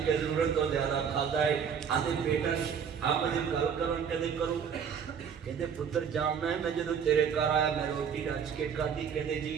کے ضرورت تو زیادہ کھادا ہے آندے بیٹا آپ مجھے گل کرن کدے کرو کہندے پتر جاننا ہے میں جدوں تیرے گھر آیا میں روٹی رچ کے کھادی کہندے جی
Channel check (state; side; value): quieter; left; 7.2 dB